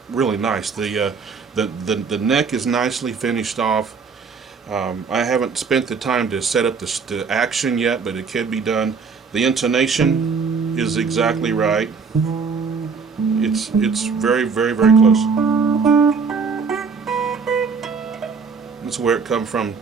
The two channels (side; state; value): left; quieter; 5.3 dB